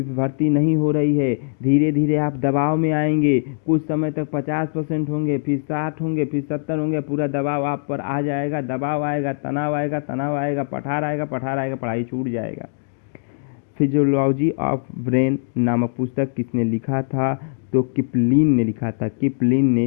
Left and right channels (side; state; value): right; silent; digital silence